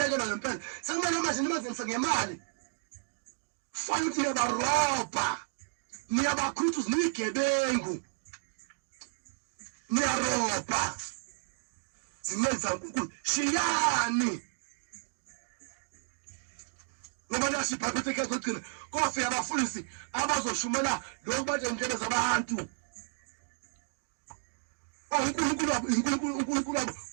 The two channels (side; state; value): left; silent; digital silence